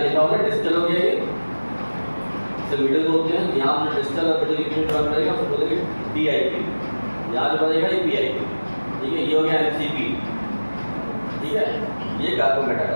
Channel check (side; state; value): both; inverted; correlation -1.00